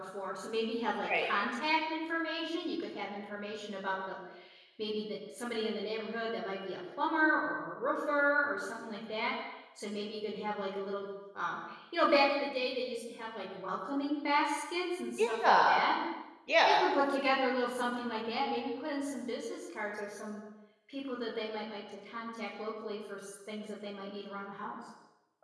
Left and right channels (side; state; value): both; identical; correlation 1.00